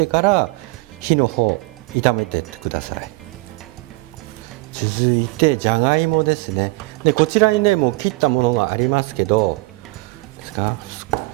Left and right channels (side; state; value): left; quieter; 24.0 dB